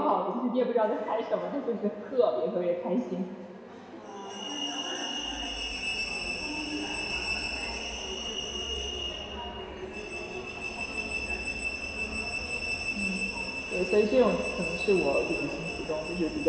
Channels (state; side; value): identical; both; correlation 1.00